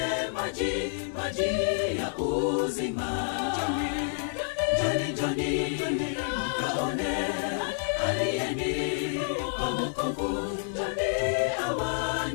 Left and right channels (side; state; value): right; silent; digital silence